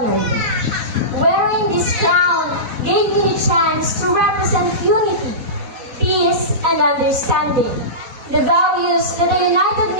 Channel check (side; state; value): left; late; 4.1 ms